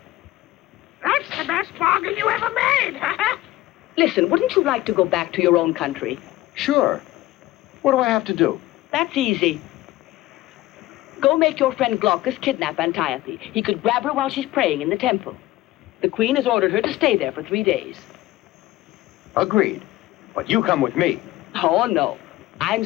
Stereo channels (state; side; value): quieter; right; 16.4 dB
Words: That's the best bargain you ever made. Listen, wouldn't you like to go back to your own country? Sure. What do I have to do? That's easy. Go make your friend Glaucus kidnap Antiope. He could grab her while she's praying in the temple. The queen has ordered her to stay there for 3 days. Agreed. But you come with me. Oh, no. I'm